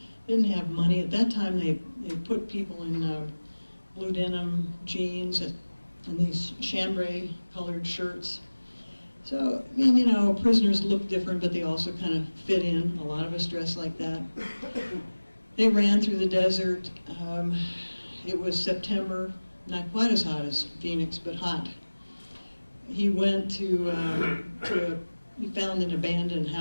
didn't have money. At that time, they put people in blue denim jeans and these chambray colored shirts. So, I mean, you know, prisoners look different, but they also kind of fit in. A lot of us dress like that. They ran through the desert. It was September, not quite as hot as Phoenix, but hot. He went he found an abandoned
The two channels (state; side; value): inverted; both; correlation -1.00